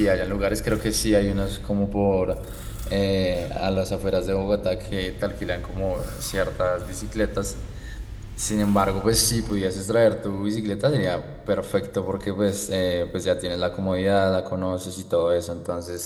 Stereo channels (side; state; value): both; identical; correlation 1.00